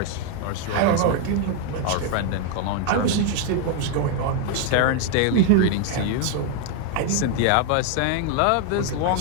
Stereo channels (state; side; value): different; both; correlation 0.01